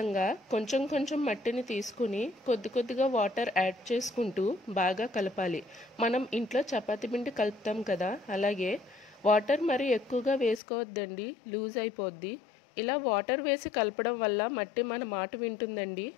కొంచెం కొంచెం మట్టిని తీసుకుని కొద్ది కొద్దిగా వాటర్ యాడ్ చేసుకుంటూ బాగా కలపాలి. మనం ఇంట్లో చపాతీ పిండి కలుపుతాం కదా, అలాగే వాటర్ మరి ఎక్కువగా వేసుకోవద్దండి, లూజ్ అయిపోద్ది. ఇలా వాటర్ వేసి కలపడం వల్ల మట్టి మన మాట వింటుందండి.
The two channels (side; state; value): right; drops out; at 10.6 s